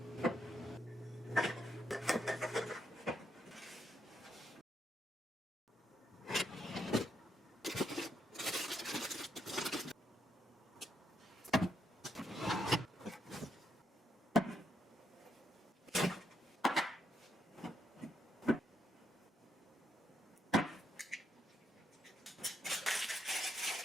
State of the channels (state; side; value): normal; both; correlation 0.78